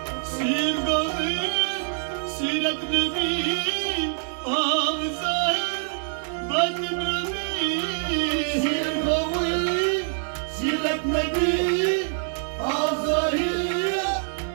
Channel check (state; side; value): silent; left; digital silence